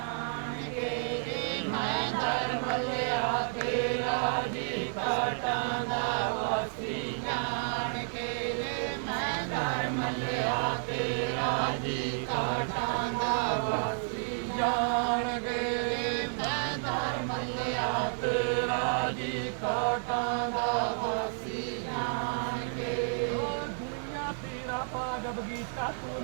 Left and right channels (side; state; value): left; silent; digital silence